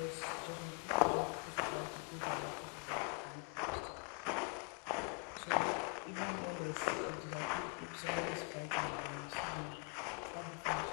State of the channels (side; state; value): right; quieter; 33.5 dB